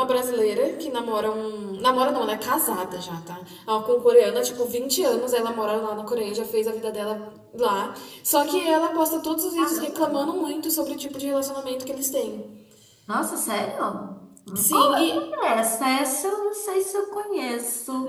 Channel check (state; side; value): identical; both; correlation 1.00